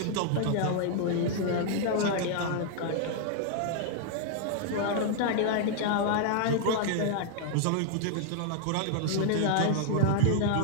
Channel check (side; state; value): both; different; correlation -0.01